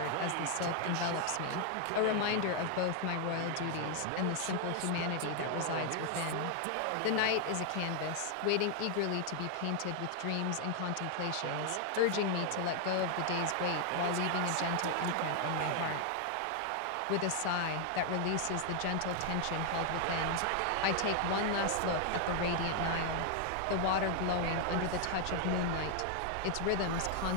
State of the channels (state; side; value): different; both; correlation 0.00